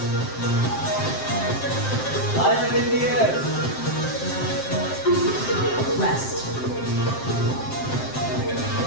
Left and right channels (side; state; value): right; late; 7.6 ms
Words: Eyes in the air. Rest.